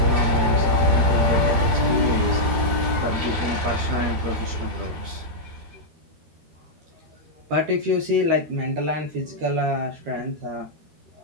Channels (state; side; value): late; left; 13 ms